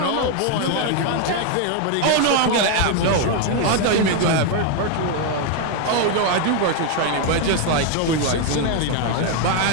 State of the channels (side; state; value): both; different; correlation 0.01